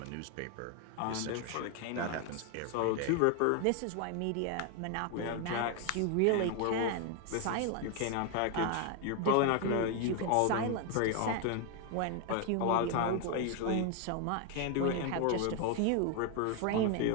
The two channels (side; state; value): both; different; correlation 0.01